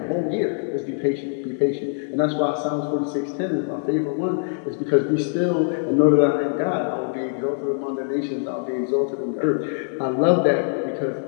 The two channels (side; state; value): right; silent; digital silence